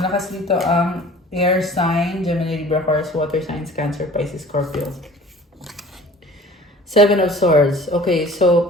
dito ang air sign, Gemini, Libra, Aquarius, water signs, Cancer, Pisces, Scorpio. 7 of Swords. Okay,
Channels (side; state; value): both; normal; correlation 0.46